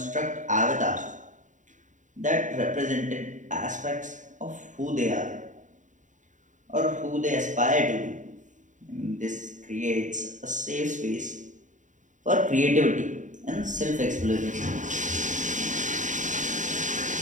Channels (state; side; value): late; left; 0.36 ms